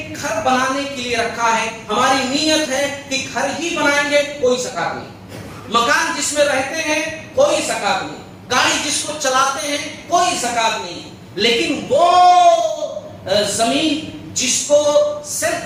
گھر بنانے کے لیے رکھا ہے، ہماری نیت ہے کہ گھر ہی بنائیں گے، کوئی زکات نہیں۔ مکان جس میں رہتے ہیں کوئی زکات نہیں، گاڑی جس کو چلاتے ہیں کوئی زکات نہیں، لیکن وہ زمین جس کو سیل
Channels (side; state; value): both; identical; correlation 1.00